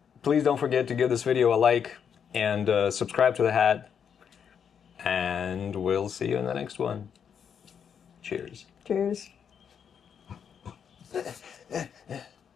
Please don't forget to give this video a like and subscribe to The Hat. And we'll see you in the next one. Cheers. Cheers. There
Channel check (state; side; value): quieter; right; 7.6 dB